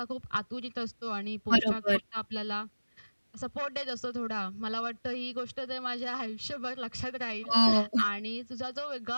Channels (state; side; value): inverted; both; correlation -1.00